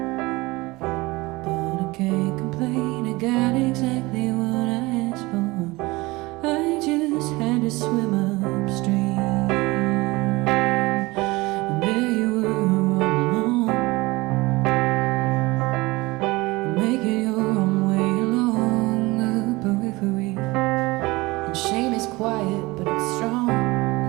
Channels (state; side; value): quieter; left; 22.0 dB